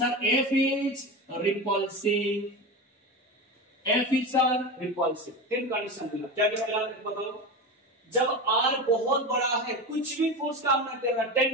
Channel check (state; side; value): normal; both; correlation 0.24